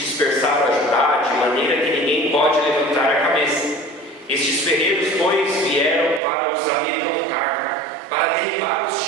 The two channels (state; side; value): drops out; left; at 6.2 s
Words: a Judá, de maneira que ninguém pode levantar a cabeça. Estes ferreiros, pois, vieram para os amedrontar, para derribar os